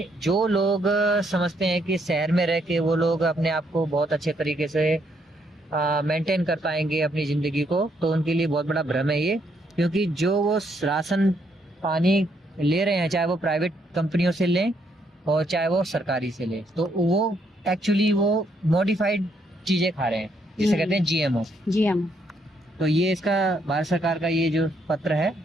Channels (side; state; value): both; normal; correlation 0.73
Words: जो लोग समझते हैं कि शहर में रह के वो लोग अपने आप को बहुत अच्छे तरीके से मेंटेन कर पाएंगे अपनी जिंदगी को, तो उनके लिए बहुत बड़ा भ्रम है ये। क्योंकि जो वो राशन पानी ले रहे हैं, चाहे वो प्राइवेट कंपनियों से लें और चाहे वो सरकारी से लें, तो वो एक्चुअली वो मॉडिफाइड चीजें खा रहे हैं, जिसे कहते हैं जीएमओ। जीएमओ, तो ये इसका भारत सरकार का ये जो पत्र है,